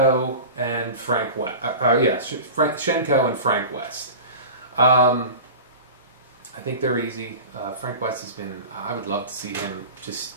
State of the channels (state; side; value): inverted; both; correlation -0.34